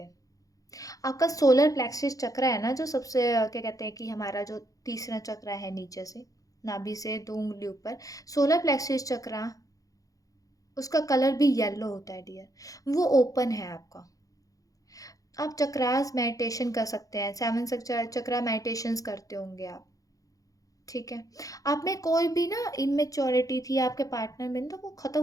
आपका सोलर प्लेक्सिस चक्र है ना, जो सबसे क्या कहते हैं कि हमारा जो तीसरा चक्र है नीचे से, नाभि से 2 उंगली ऊपर, सोलर प्लेक्सिस चक्र, उसका कलर भी येलो होता है डियर। वो ओपन है आपका। आप चक्रास मेडिटेशन कर सकते हैं, 7 चक्रा मेडिटेशंस करते होंगे आप। ठीक है, आप में कोई भी ना इमेच्योरिटी थी आपके पार्टनर में, तो वो ख़त्म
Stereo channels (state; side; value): late; right; 0.17 ms